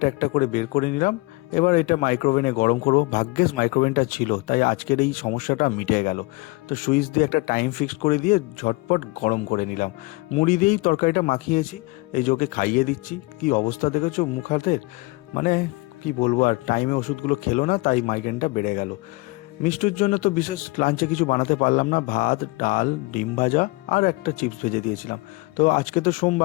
একটা করে বের করে নিলাম। এবার এটা মাইক্রোওভেনে গরম করব। ভাগ্যিস মাইক্রোওভেনটা ছিল, তাই আজকের এই সমস্যাটা মিটে গেল। তো সুইচ দিয়ে একটা টাইম ফিক্সড করে দিয়ে ঝটপট গরম করে নিলাম। মুড়ি দিয়েই তরকারিটা মাখিয়েছি, এই যে ওকে খাইয়ে দিচ্ছি। কি অবস্থা দেখেছো মুখ হাতের, মানে কি বলবো আর, টাইমে ওষুধগুলো খেলো না, তাই মাইগ্রেনটা বেড়ে গেল। মিষ্টুর জন্য তো বিশেষ লাঞ্চে কিছু বানাতে পারলাম না, ভাত ডাল ডিম ভাজা আর একটা চিপস ভেজে দিয়েছিলাম। তো আজকে তো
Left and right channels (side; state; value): right; quieter; 24.3 dB